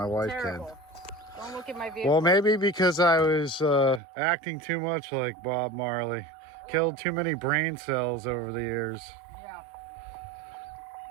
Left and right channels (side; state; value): left; drops out; at 4.0 s